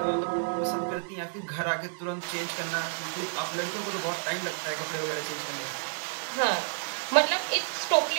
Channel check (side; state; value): left; silent; digital silence